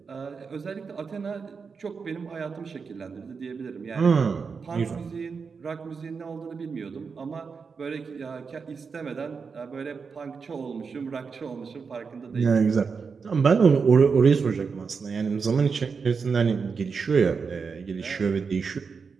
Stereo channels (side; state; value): left; quieter; 5.4 dB